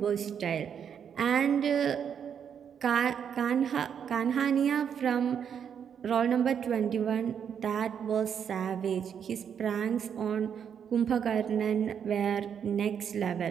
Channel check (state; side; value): quieter; left; 7.9 dB